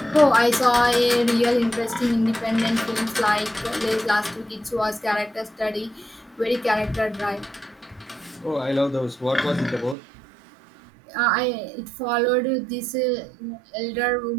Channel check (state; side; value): drops out; left; at 10.0 s